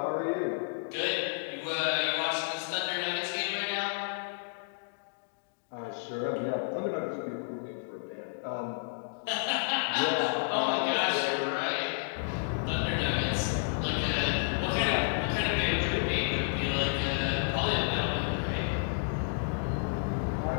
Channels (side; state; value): right; silent; digital silence